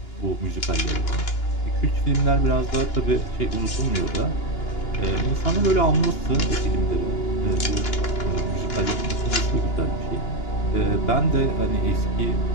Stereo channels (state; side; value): late; right; 2.9 ms